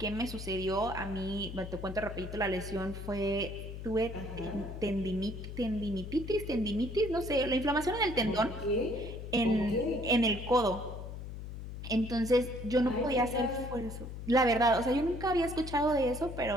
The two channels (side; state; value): left; noise; hum, 9 dB below the sound